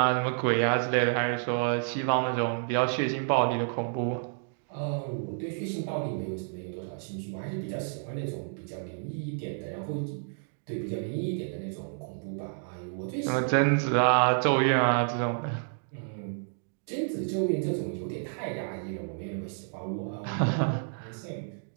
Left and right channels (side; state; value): left; silent; digital silence